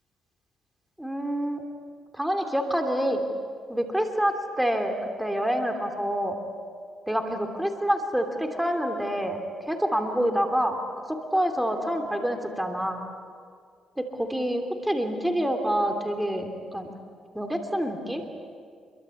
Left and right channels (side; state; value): both; normal; correlation 0.90